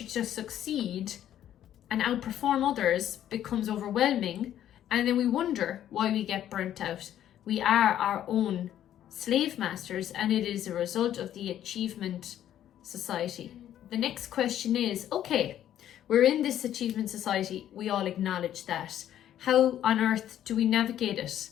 to succeed and outperform others becomes overwhelming. And then we wonder why we get burnt out. We are our own slave masters, and it is a result of the achievement society. The next question is, okay, we're in this achievement society. We all acknowledge that. How on earth do we navigate it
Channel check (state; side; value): quieter; right; 11.3 dB